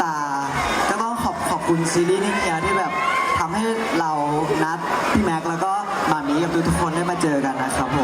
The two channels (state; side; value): identical; both; correlation 1.00